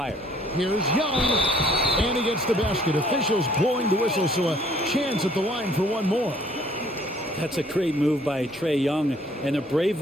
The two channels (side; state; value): both; normal; correlation 0.59